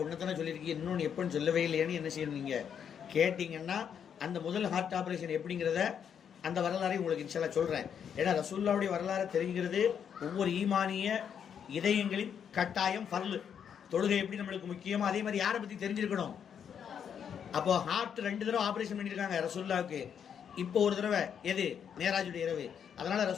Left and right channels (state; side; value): quieter; right; 8.0 dB